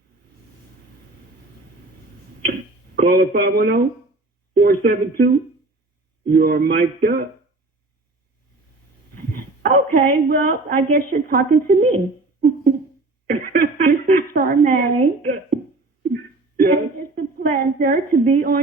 Caller 510-472. You are mic'd up. Okay, well, I guess you're talking to me. This is Charmaine. Yes. And it's a pleasure to be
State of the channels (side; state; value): left; quieter; 3.1 dB